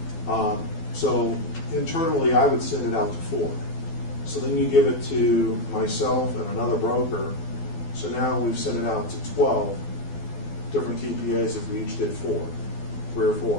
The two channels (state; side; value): late; right; 12 ms